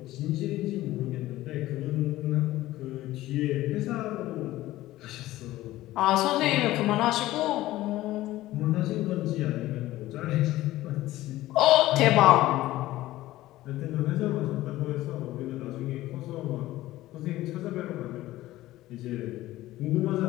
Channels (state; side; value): quieter; right; 16.2 dB